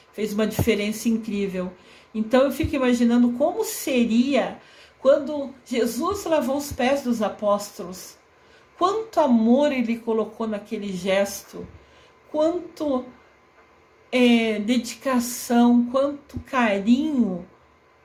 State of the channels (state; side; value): identical; both; correlation 1.00